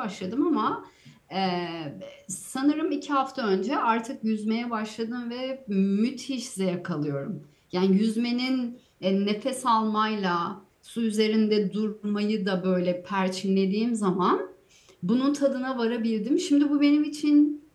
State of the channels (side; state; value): both; identical; correlation 1.00